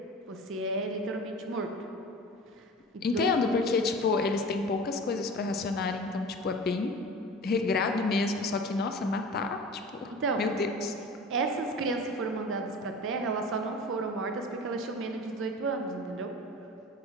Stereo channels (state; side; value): normal; both; correlation 0.37